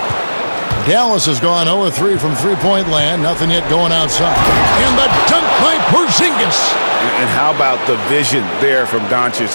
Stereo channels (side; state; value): both; inverted; correlation -1.00